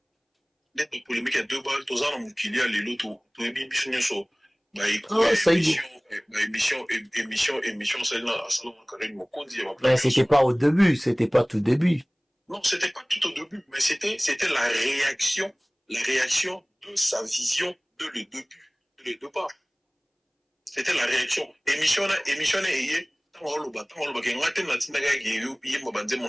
d'être polémique à 2 balles tous en mukili à lelo to émission so ba émission celle là salon Karim Mokondi mais c'était pas au début, c'était pas tout début. Non, c'était pas tout au début, mais c'était la réaction de sa vision de le deux parts. C'était la réaction. Émission est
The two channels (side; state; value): both; identical; correlation 1.00